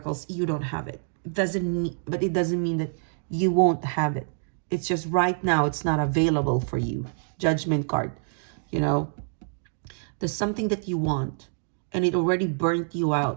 you don't have it. It doesn't mean that you won't have it. It's just right now it's not available for you. Judgment card, there's something that you want and it already burnt you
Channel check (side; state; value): left; silent; digital silence